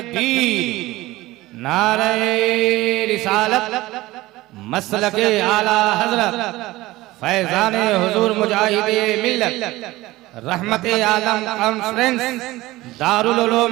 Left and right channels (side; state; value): left; quieter; 18.4 dB